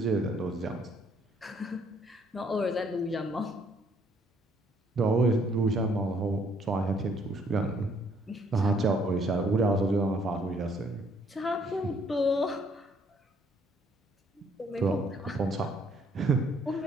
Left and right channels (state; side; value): normal; both; correlation 0.66